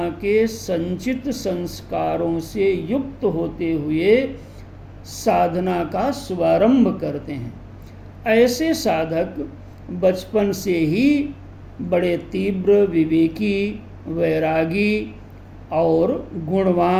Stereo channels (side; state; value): both; identical; correlation 1.00